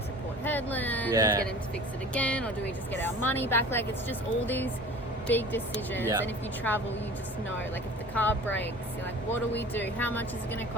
to Port Hedland and get him to fix it again, or do we just get our money back? Like, it's just all these big decisions. And if you travel, you just know, like, if the car breaks, you're like, what do we do? How much is it gonna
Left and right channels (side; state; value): both; normal; correlation 0.42